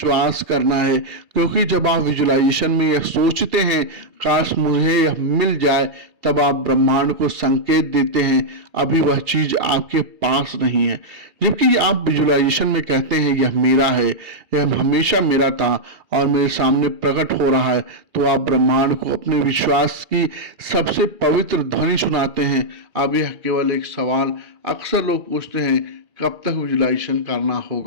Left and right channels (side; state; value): left; late; 2.3 ms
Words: करना है। क्योंकि जब आप विजुअलाइजेशन में यह सोचते हैं काश मुझे यह मिल जाए, तब आप ब्रह्मांड को संकेत देते हैं अभी वह चीज आपके पास नहीं है। जबकि आप विजुअलाइजेशन में कहते हैं यह मेरा है, यह हमेशा मेरा था और मेरे सामने प्रकट हो रहा है, तो आप ब्रह्मांड को अपने विश्वास की सबसे पवित्र ध्वनि सुनाते हैं। अब यह केवल एक सवाल अक्सर लोग पूछते हैं, कब तक विजुअलाइजेशन करना